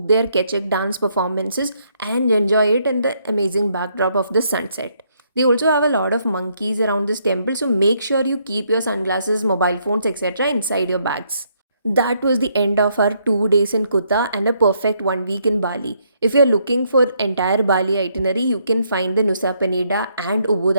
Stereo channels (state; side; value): inverted; both; correlation -0.72